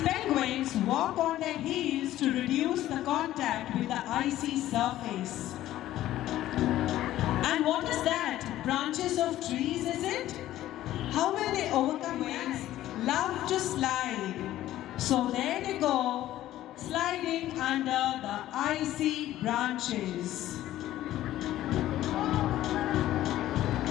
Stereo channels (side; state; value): right; quieter; 14.0 dB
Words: penguins walk on their heels to reduce the contact with the icy surface. And what is that? Branches of trees, is it? How will they overcome winds? Love to slide. So there they go, sliding under the icy branches.